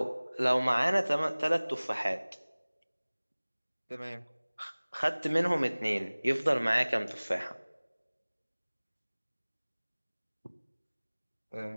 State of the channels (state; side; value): inverted; both; correlation -1.00